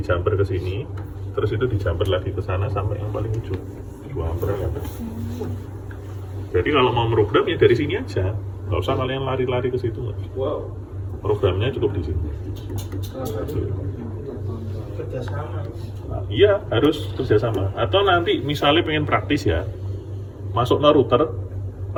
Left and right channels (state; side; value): identical; both; correlation 1.00